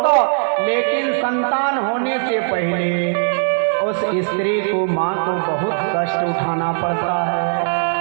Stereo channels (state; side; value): silent; left; digital silence